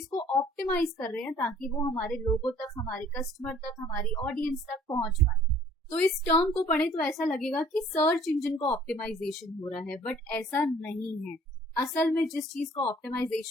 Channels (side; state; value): both; normal; correlation 0.55